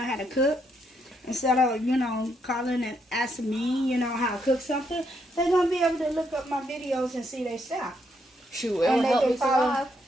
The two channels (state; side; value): normal; both; correlation 0.76